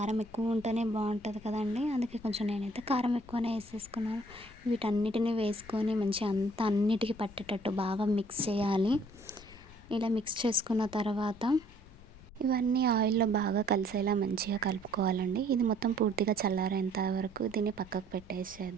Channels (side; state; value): left; noise; rumble, 21 dB below the sound